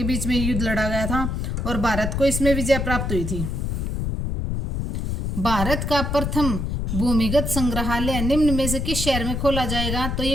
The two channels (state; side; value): noise; left; rumble, 2 dB below the sound